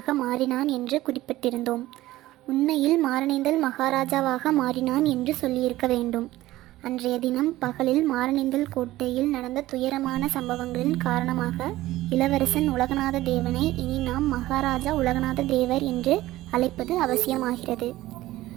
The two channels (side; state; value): left; quieter; 16.4 dB